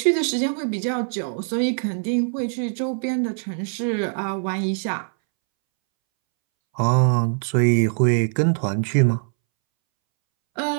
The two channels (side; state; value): left; silent; 64 dB below the other